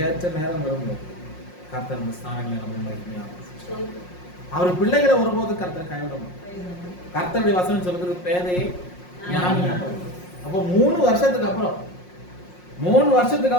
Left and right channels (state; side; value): late; right; 5.6 ms